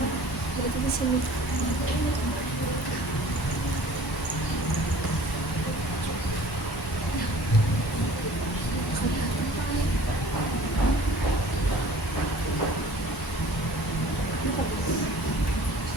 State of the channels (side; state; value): both; normal; correlation 0.48